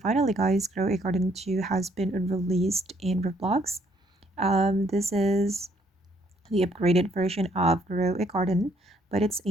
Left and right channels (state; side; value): normal; both; correlation 0.67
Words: guys, Grow a Garden 2 has been released in Roblox. This is the upgraded version of Grow a Garden, but it's